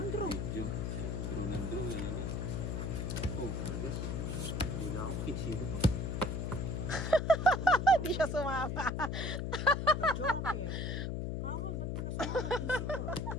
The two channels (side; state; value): left; noise; hum, 2 dB below the sound